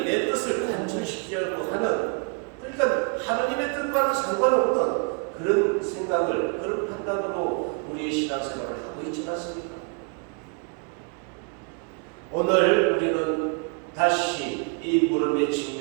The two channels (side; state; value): left; quieter; 37.6 dB